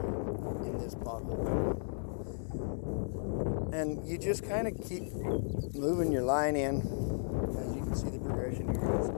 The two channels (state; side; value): silent; right; 55 dB below the other